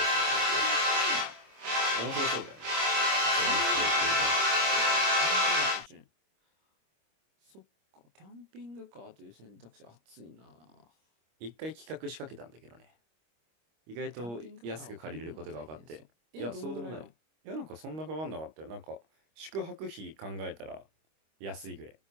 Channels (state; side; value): late; left; 25 ms